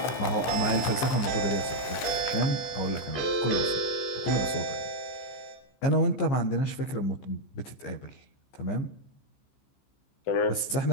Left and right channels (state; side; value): late; right; 15 ms